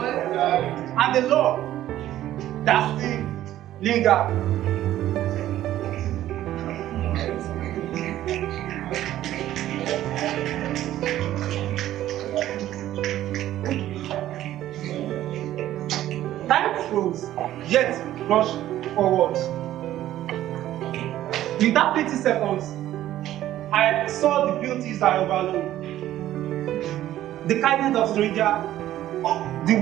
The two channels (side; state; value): left; quieter; 13.3 dB